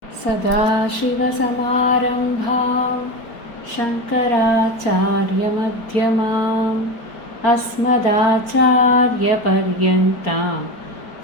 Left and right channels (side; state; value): right; late; 4.4 ms